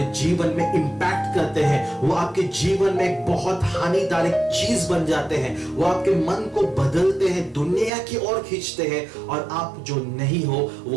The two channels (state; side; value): drops out; left; at 7.9 s